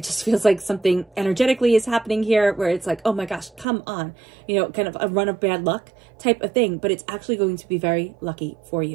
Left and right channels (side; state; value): left; drops out; at 3.7 s